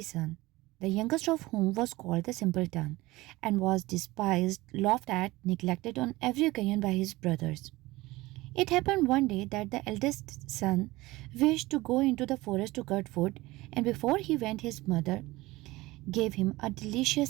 the youngest of whom was called the simpleton, and was despised, laughed at, neglected on every occasion by his brothers. It happened one day that the eldest son wished to go into the forest to cut wood, and before he went, his mother gave him a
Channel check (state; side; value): quieter; left; 19.7 dB